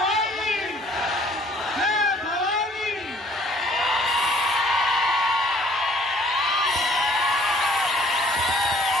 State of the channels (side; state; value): both; normal; correlation 0.58